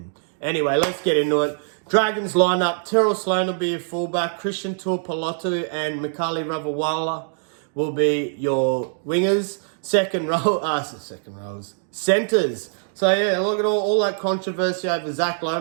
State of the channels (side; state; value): left; silent; digital silence